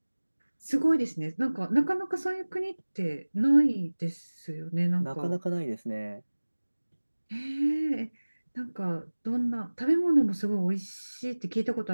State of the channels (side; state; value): both; inverted; correlation -1.00